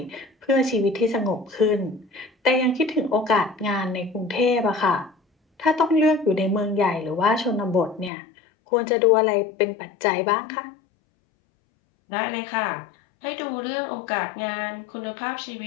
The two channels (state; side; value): drops out; right; at 8.1 s